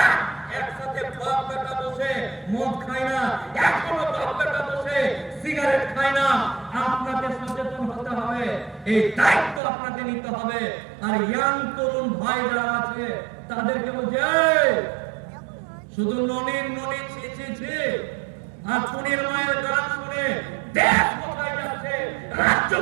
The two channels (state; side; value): drops out; left; at 9.6 s